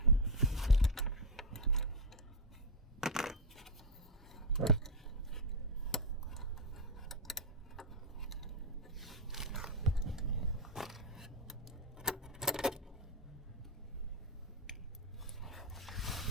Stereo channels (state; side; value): normal; both; correlation 0.04